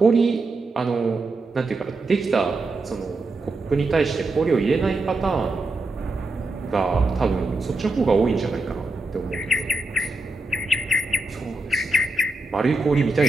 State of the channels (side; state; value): left; quieter; 3.0 dB